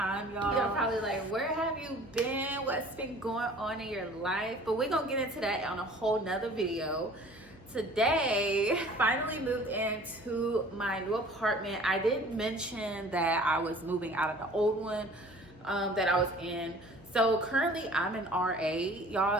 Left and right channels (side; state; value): both; normal; correlation 0.49